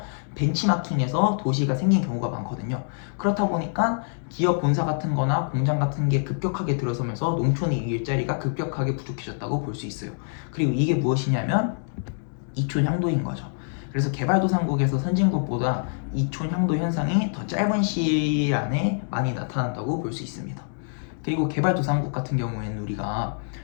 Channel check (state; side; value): silent; right; digital silence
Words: 벤치마킹해서 도시가 생긴 경우가 많거든요. 그렇다 보니까 기업 본사 같은 거나 공장 같은 게 급격하게 들어서면서 농촌의 일자리가 급격하게 부족해졌다고 볼 수 있어요. 그리고 이게 무엇이냐면 이촌향도인 거죠. 그래서 개발도상국에서 선진국보다 이촌향도 현상이 더 짧은 시일 안에 많이 나타난다고 볼 수 있습니다. 그리고 개발도상국 같은 경우에는